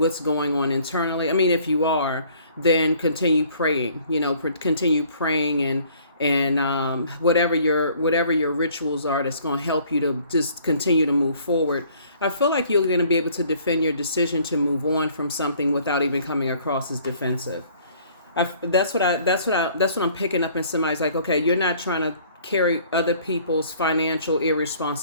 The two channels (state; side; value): inverted; both; correlation -0.57